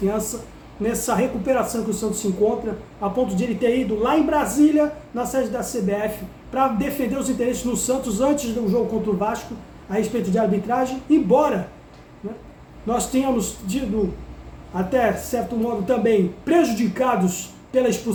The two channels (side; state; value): both; identical; correlation 1.00